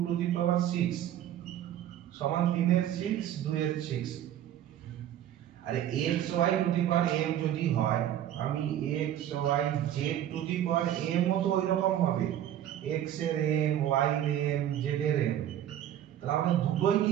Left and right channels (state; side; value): quieter; left; 11.3 dB